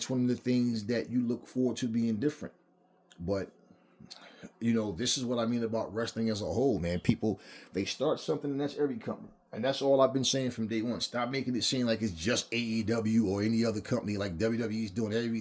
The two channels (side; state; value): both; identical; correlation 1.00